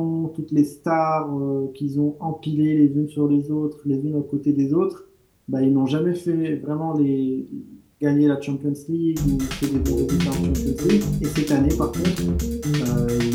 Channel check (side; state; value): both; identical; correlation 1.00